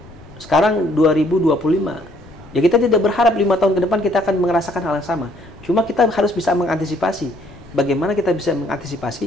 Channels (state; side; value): noise; left; rumble, 21 dB below the sound